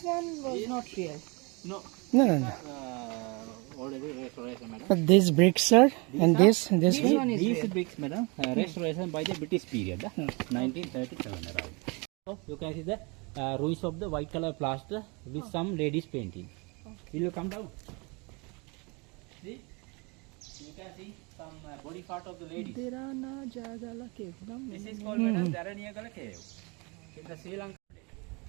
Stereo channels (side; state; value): left; quieter; 29.3 dB